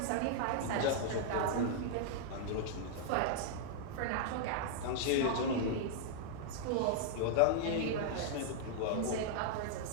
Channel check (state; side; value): different; both; correlation -0.01